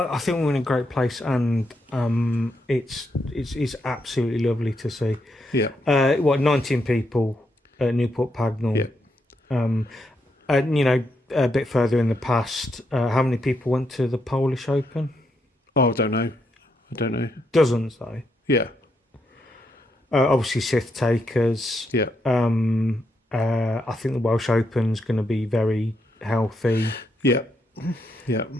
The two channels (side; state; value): both; normal; correlation 0.80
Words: think we're in a great place, and it's absolutely lovely to see. Yeah. 19 people at Newport Pagnell. Yeah. And you know, a bit further in the past, how many people went to the Polish Open? Oh, I don't know. Dozens, though. Yeah. Obviously, Sith takers. Yeah. I think the Welsh Open's going to be very healthy. Yeah. Yeah.